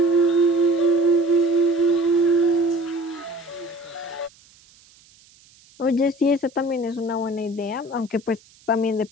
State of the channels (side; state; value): right; noise; hiss, 28 dB below the sound